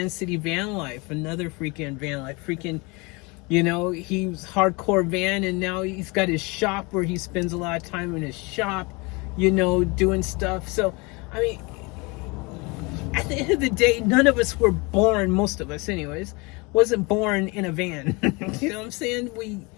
City Van Life, another freaking van life. Freaking, he was hardcore van, and now he's got his shop where he spends a lot of time in his shop, doing stuff. So, I mean, at the end of the day, none of us were born, most of us anyways, wasn't born in a van. You know what I'm saying? We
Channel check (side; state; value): right; quieter; 27.5 dB